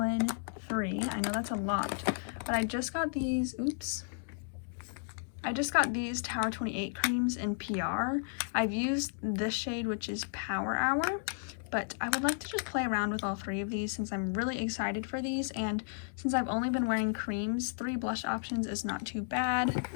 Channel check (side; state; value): right; silent; digital silence